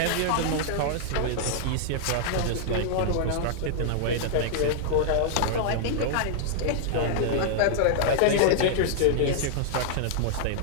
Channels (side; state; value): both; different; correlation -0.01